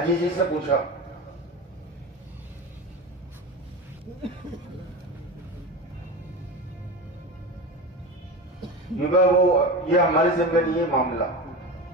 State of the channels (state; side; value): normal; both; correlation 0.25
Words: जी से पूछा, वो ये हमारे जिम्मे नहीं है मामला,